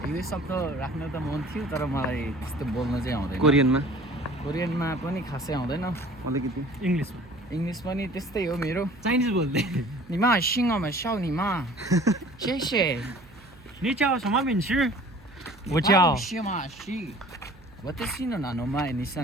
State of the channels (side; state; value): right; noise; hum, 25 dB below the sound